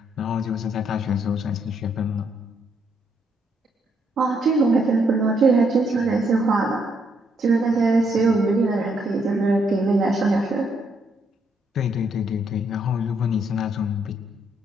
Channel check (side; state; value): both; normal; correlation 0.74